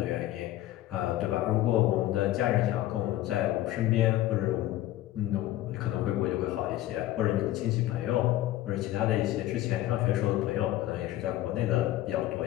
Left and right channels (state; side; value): quieter; right; 14.7 dB